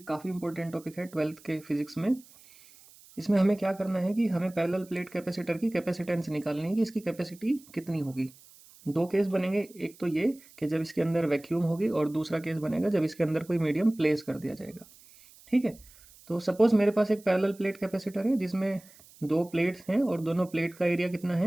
काफ़ी इंपॉर्टेंट टॉपिक है 12th के फिजिक्स में। इसमें हमें क्या करना है कि हमें पैरेलल प्लेट कैपेसिटर की कैपेसिटेंस निकालनी है कि इसकी कैपेसिटी कितनी होगी। दो केस बनेंगे, एक तो ये कि जब इसके अंदर वैक्यूम होगी और दूसरा केस बनेगा जब इसके अंदर कोई मीडियम प्लेस कर दिया जाएगा। ठीक है, तो सपोज़ मेरे पास एक पैरेलल प्लेट कैपेसिटर है जिसमें दो प्लेट्स हैं और दोनों प्लेट का एरिया कितना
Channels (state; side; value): noise; right; hiss, 24 dB below the sound